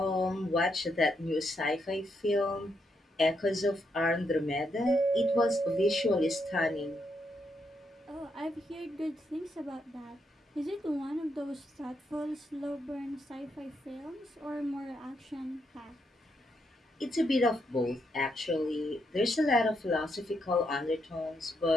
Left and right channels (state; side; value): normal; both; correlation 0.79